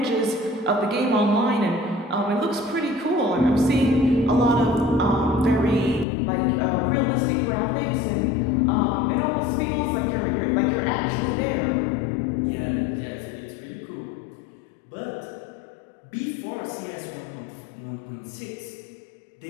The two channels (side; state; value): right; drops out; at 6.1 s